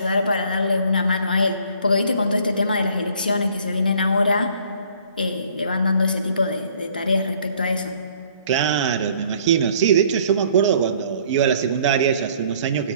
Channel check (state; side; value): inverted; both; correlation -0.58